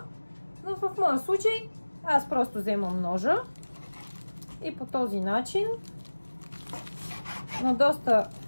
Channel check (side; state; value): both; inverted; correlation -1.00